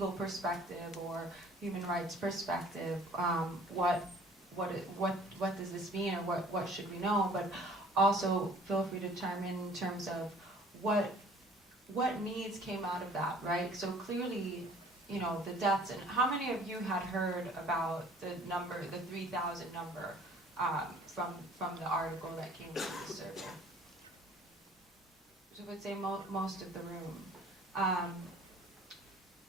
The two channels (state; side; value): normal; both; correlation 0.52